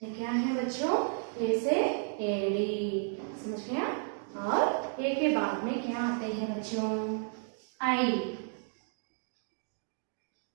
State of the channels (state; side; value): silent; left; 56 dB below the other